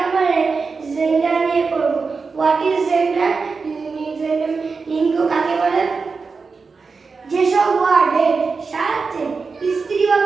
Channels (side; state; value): left; quieter; 4.7 dB